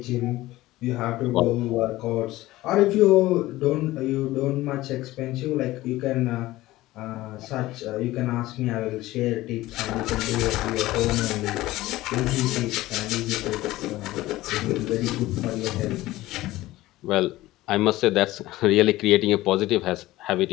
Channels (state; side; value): quieter; right; 17.3 dB